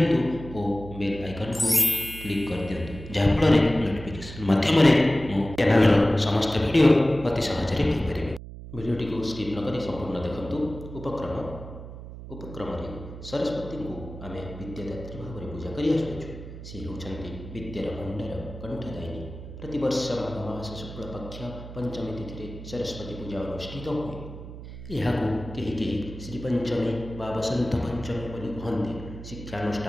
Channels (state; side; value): noise; right; hum, 12 dB below the sound